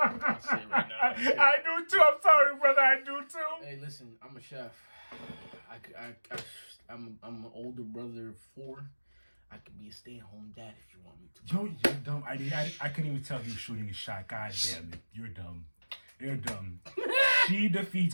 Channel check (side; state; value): both; inverted; correlation -1.00